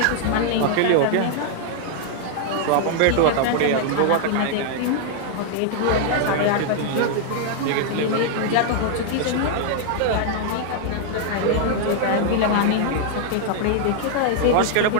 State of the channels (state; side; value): different; both; correlation 0.00